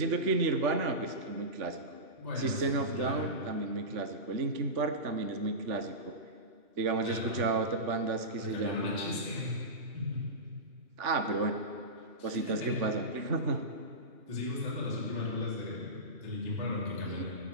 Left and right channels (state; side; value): late; left; 3.4 ms